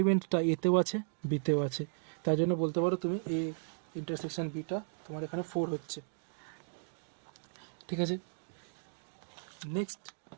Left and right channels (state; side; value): silent; left; digital silence